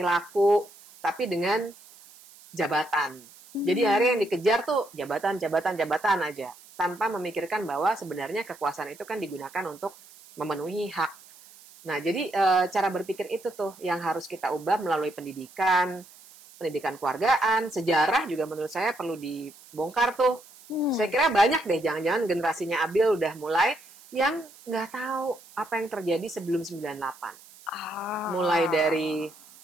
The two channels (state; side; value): noise; right; hiss, 22 dB below the sound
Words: tapi dengan jabatan. Jadi hari yang dikejar tuh jabatan aja, tanpa memikirkan bahwa sebenarnya kekuasaan itu kan digunakan untuk memenuhi hak. Nah, jadi cara berpikir itu tuh yang harus kita ubah melalui pendidikan, pendidikan keluargaan, sejarah juga menurut saya perlu dibongkar tuh. Saya kira banyak deh, jangan-jangan generasinya Abil udah mulai yang nggak tahu apa yang terjadi sebelum 98. Mulai dari